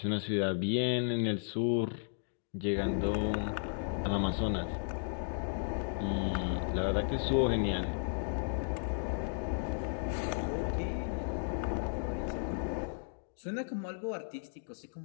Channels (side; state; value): right; silent; digital silence